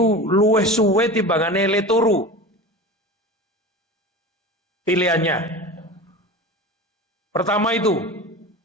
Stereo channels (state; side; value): normal; both; correlation 0.31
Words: luwih suwe timbangane le turu. Pilihannya. Pertama itu